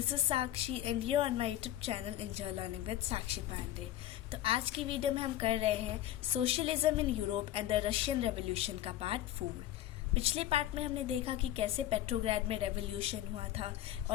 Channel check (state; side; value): quieter; right; 13.3 dB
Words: is Sakshi and you are on my YouTube channel Enjoy Learning with Sakshi Pandey। तो आज की video में हम कर रहे हैं socialism in Europe and the Russian revolution का पार्ट 4। पिछले पार्ट में हमने देखा कि कैसे पेट्रोग्राड में रेवोल्यूशन हुआ था